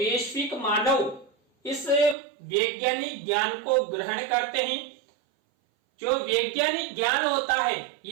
मानव इस वैज्ञानिक ज्ञान को ग्रहण करते हैं। जो वैज्ञानिक ज्ञान होता है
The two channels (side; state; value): left; drops out; at 2.1 s